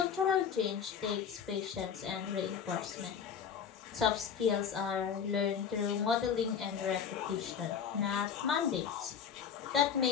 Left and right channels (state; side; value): quieter; right; 7.4 dB